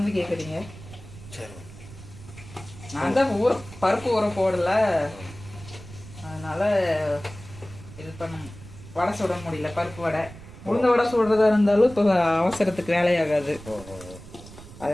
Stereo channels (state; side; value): noise; right; rumble, 17 dB below the sound